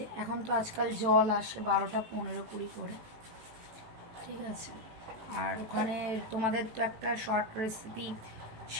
এখন তো আজকাল জল আসে 12টা 15-20 করে ঠিক আছে আর ওখানে তোমাদের তো একটা শর্ট রেসিপি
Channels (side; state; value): left; late; 18 ms